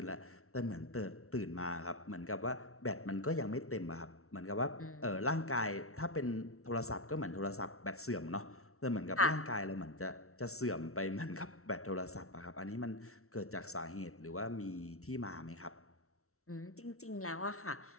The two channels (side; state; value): right; late; 0.63 ms